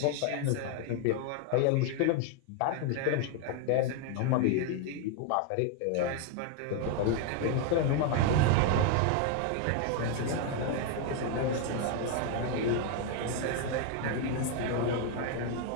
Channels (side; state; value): both; different; correlation 0.01